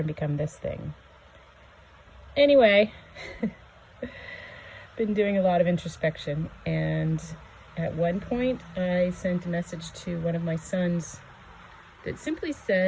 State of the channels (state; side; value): identical; both; correlation 1.00